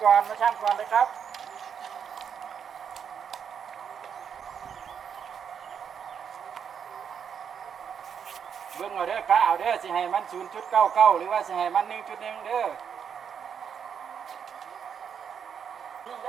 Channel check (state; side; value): quieter; left; 7.5 dB